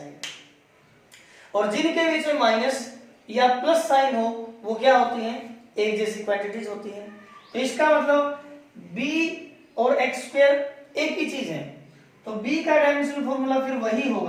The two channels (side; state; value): both; identical; correlation 1.00